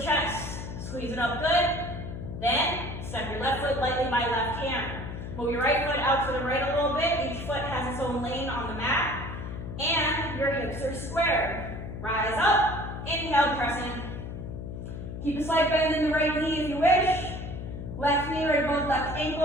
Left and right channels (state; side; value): noise; left; hum, 8 dB below the sound